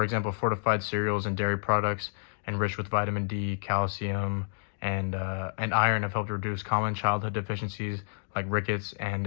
example, fortified cereals and dairy products enriched with vitamin D, calcium, and iron have helped reduce common childhood deficiencies like rickets and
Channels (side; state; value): right; silent; digital silence